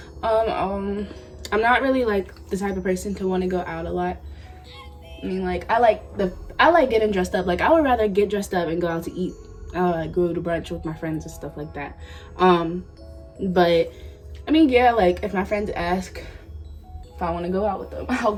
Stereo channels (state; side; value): identical; both; correlation 1.00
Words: I'm not really like the type of person to want to go out a lot. I mean, like, I like getting dressed up. Like, I would rather get dressed up and go out to eat. Like, go to brunch with my friends and stuff like that. But I mean, yeah, like, if my friends ask if I want to go out with them, I'll